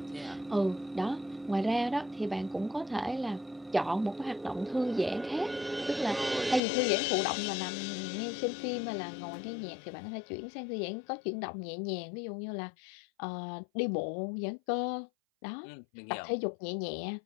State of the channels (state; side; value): drops out; right; at 6.6 s